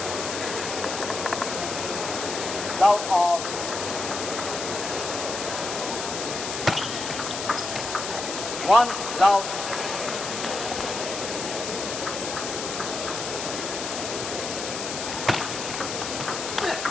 Love off. One love.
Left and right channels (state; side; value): noise; left; hiss, 5 dB below the sound